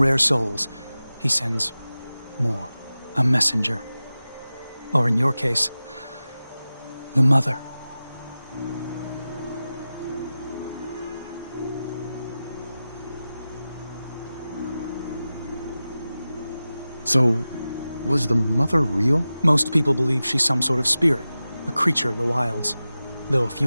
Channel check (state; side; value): inverted; both; correlation -0.95